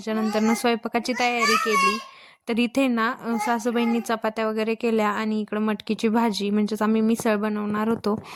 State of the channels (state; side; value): identical; both; correlation 1.00